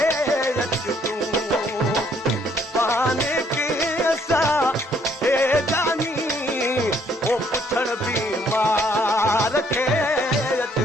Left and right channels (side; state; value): both; normal; correlation 0.66